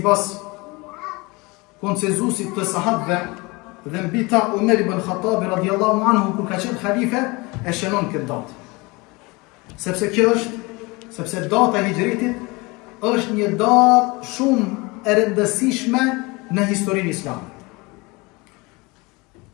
konsenzusit të sahabëve dhe mbi ta Umar ibn Khattabi radhiyallahu anhu kur ka qenë halife e shënon këtë datë. Sepse data e hijritit është një datë shumë e rëndësishme në historinë islame.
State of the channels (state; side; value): quieter; right; 25.1 dB